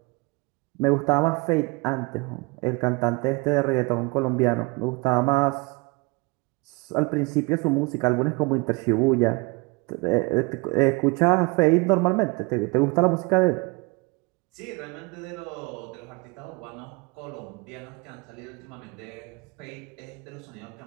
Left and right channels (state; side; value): quieter; left; 27.3 dB